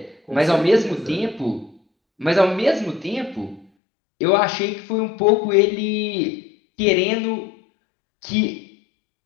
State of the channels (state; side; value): drops out; right; at 3.7 s